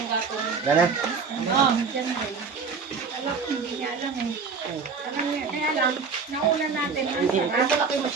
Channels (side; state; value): left; quieter; 5.2 dB